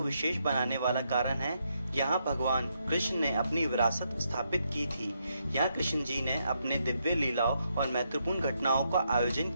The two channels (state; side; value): inverted; both; correlation -0.79